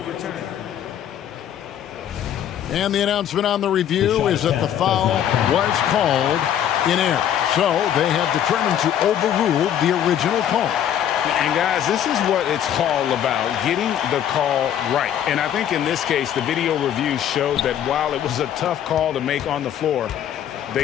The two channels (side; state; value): right; quieter; 10.2 dB